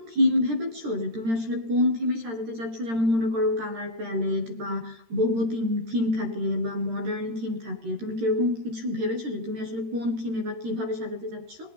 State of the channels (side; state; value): left; late; 13 ms